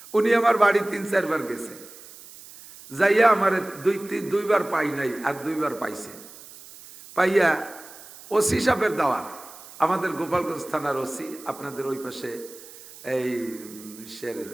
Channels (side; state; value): right; noise; hiss, 18 dB below the sound